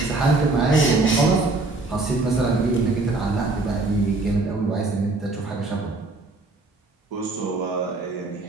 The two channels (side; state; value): left; quieter; 3.3 dB